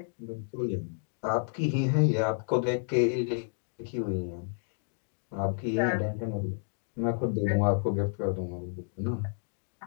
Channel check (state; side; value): silent; right; digital silence